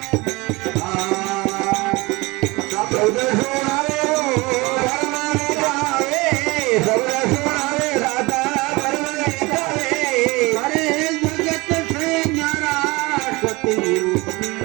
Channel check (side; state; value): left; quieter; 23.6 dB